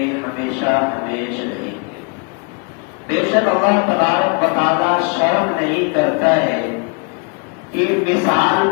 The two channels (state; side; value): quieter; right; 34.3 dB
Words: ہمیشہ ہمیشہ رہیں گے. بے شک اللہ تبارک و تعالیٰ شرم نہیں کرتا ہے کہ مثال